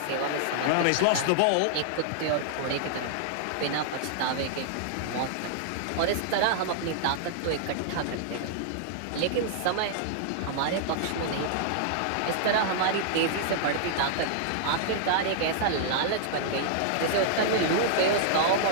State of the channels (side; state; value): both; different; correlation -0.01